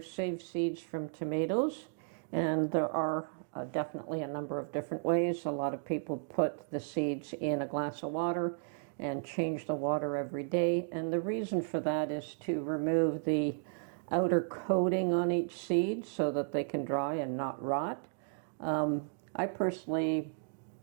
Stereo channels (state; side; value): silent; left; digital silence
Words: seeds from tomatoes, and there are definitely a number of different ways. A lot of people put the seeds in a glass of water and change the water every day, and the reason for that is to remove the outer coating on each seed so that they can dry and not rot. I personally